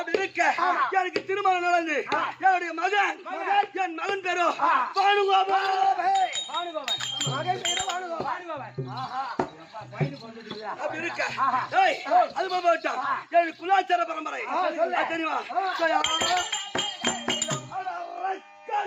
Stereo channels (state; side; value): identical; both; correlation 1.00